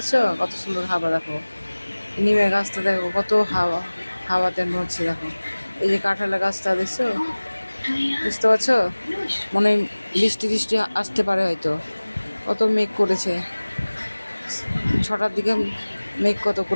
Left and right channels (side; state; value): both; inverted; correlation -1.00